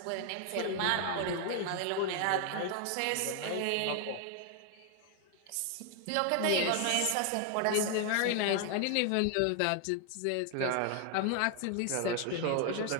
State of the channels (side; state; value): both; different; correlation 0.00